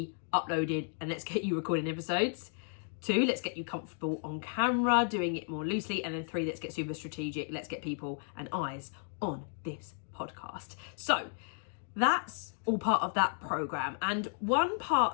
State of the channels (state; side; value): silent; right; 55 dB below the other